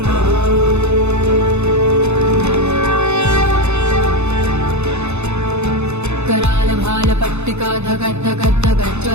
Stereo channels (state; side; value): late; left; 0.81 ms